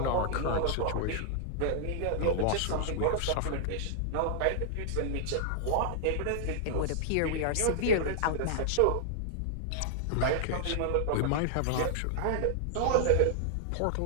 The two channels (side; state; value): both; different; correlation -0.01